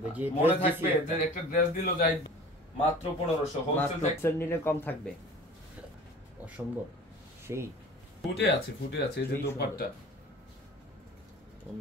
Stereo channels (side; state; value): both; normal; correlation 0.42